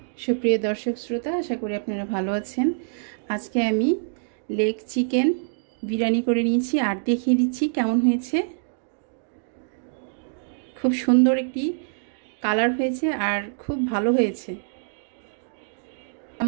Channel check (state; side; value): silent; left; digital silence